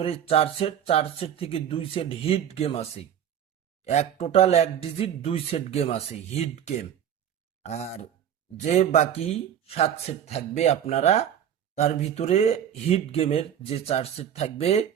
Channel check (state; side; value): quieter; left; 9.5 dB